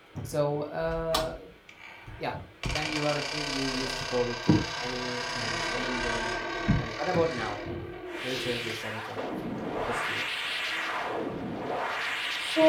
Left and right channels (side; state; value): both; identical; correlation 1.00